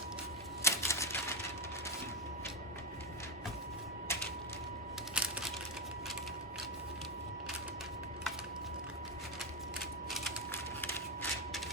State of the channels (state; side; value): normal; both; correlation 0.08